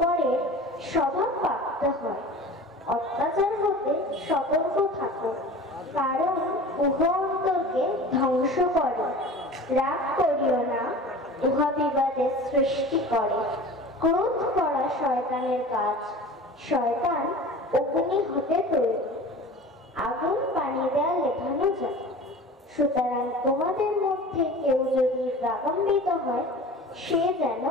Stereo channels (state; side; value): normal; both; correlation 0.38